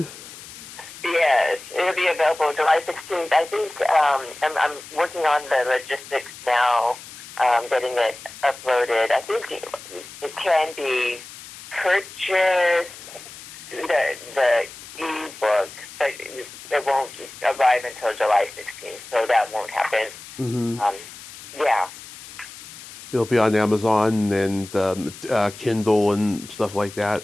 Yes, it'll be available July 16th. I think I'm working on the logistics now, getting it uploaded. I think it can be purchased, the ebook, but it won't arrive until July 16th, so that won't happen. Hmm. Um, yeah. It'll be on Amazon and Kindle and stuff like that.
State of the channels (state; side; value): noise; left; hiss, 16 dB below the sound